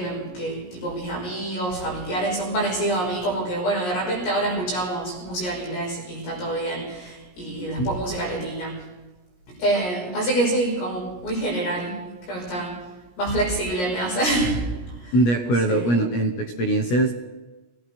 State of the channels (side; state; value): right; late; 17 ms